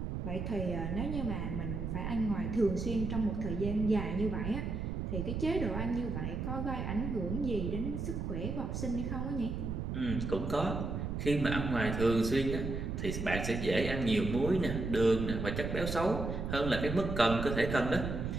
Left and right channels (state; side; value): noise; right; rumble, 3 dB below the sound